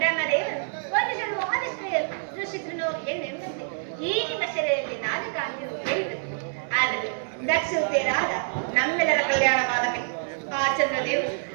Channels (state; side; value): silent; left; 61 dB below the other